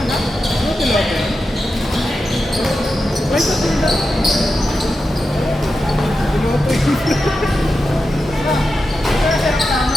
tilapia? Flight attendant. Piloto yun.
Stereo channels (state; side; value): normal; both; correlation 0.90